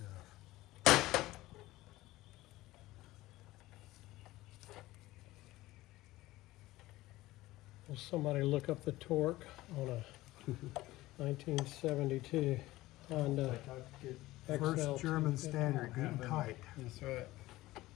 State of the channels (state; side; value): quieter; right; 17.7 dB